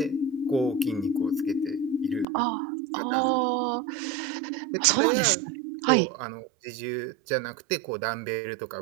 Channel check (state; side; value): drops out; left; at 2.2 s